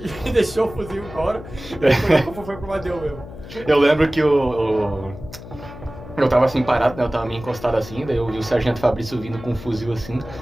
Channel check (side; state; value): left; noise; hum, 14 dB below the sound